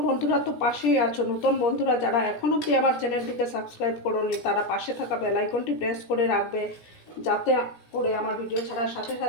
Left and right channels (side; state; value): right; late; 17 ms